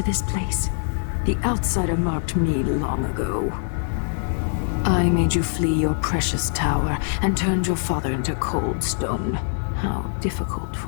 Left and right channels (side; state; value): right; silent; digital silence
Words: this place? The outsider marked me long ago. I made you flee your precious tower and turned your father into cold stone. How difficult